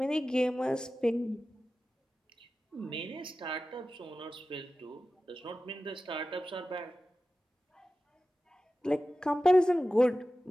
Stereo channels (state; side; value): normal; both; correlation 0.95